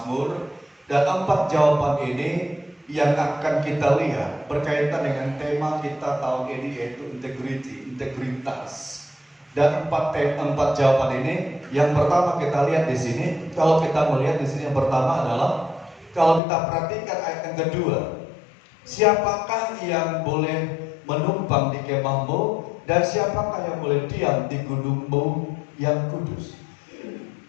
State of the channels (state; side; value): drops out; right; at 16.4 s